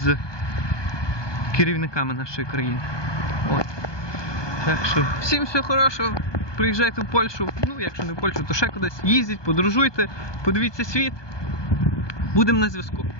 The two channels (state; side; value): late; right; 1.2 ms